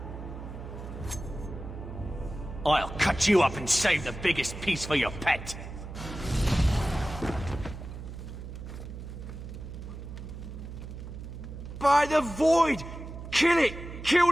I'll cut you up and save the biggest piece for your pet. By the void! Kill it! Kill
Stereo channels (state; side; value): noise; right; hum, 10 dB below the sound